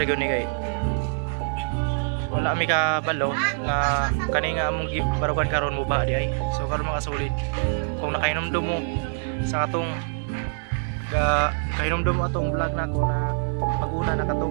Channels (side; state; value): left; silent; digital silence